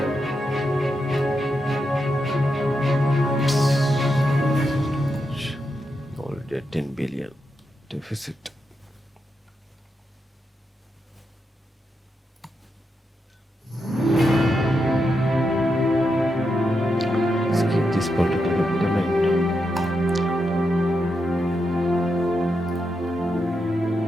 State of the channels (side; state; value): both; normal; correlation 0.85